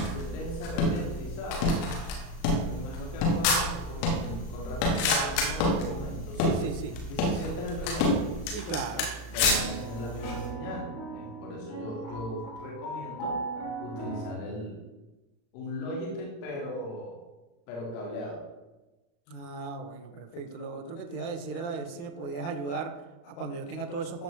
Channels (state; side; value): late; right; 35 ms